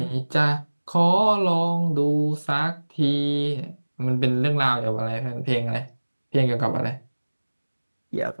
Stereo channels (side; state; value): both; inverted; correlation -1.00